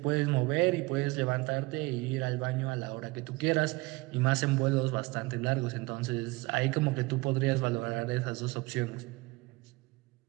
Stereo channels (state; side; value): quieter; left; 22.9 dB